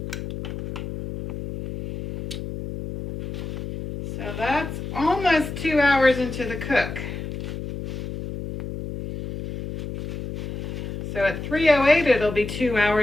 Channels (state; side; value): noise; left; hum, 7 dB below the sound